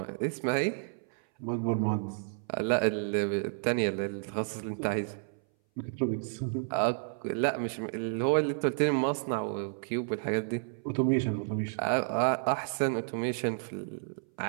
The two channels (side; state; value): left; silent; 57 dB below the other